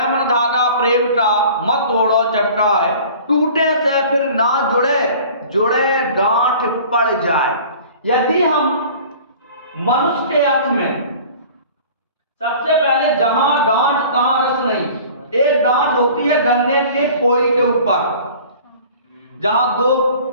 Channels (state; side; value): inverted; both; correlation -0.45